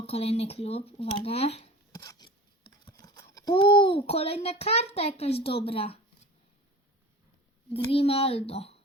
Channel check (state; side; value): normal; both; correlation 0.37